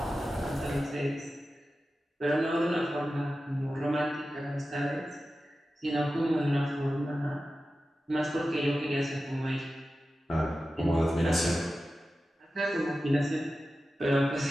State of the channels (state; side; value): normal; both; correlation 0.93